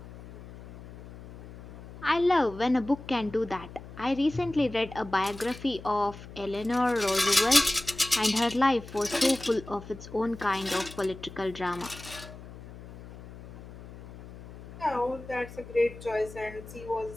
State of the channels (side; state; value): left; noise; hum, 16 dB below the sound